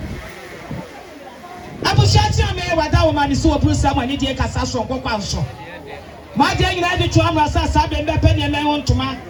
Abushati me wada woman is so bruise someone need a casasso Coquanso. My dear, you had to Amasa Sabe and Penny and want to man.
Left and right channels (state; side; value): identical; both; correlation 1.00